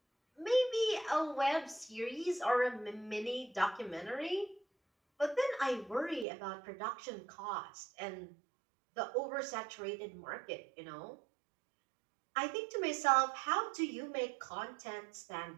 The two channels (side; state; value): left; drops out; at 6.2 s